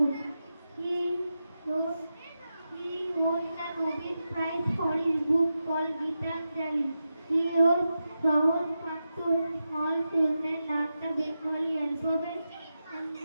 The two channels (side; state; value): both; inverted; correlation -0.90